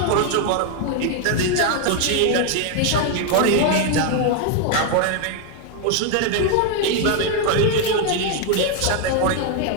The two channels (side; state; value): both; different; correlation 0.01